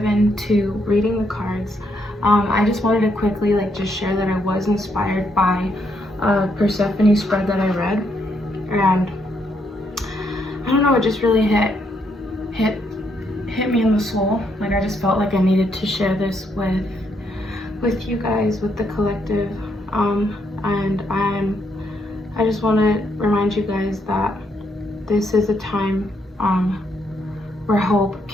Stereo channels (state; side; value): normal; both; correlation 0.75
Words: into reading the cards, I just wanted to quickly just share that I was inspired by a Persephone spread that I read, and I don't know, it just really hit me in the soul. Like, I just felt like I needed to share this with you guys, with the collective, and I just want to remind you guys that this is a time where hope